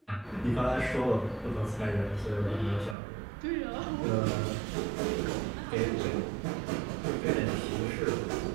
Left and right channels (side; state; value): left; drops out; at 3.0 s